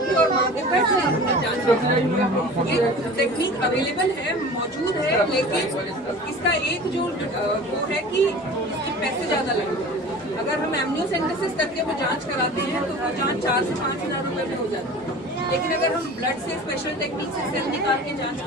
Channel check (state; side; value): normal; both; correlation 0.39